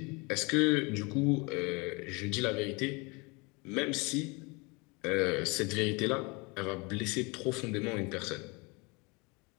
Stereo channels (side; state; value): right; quieter; 28.3 dB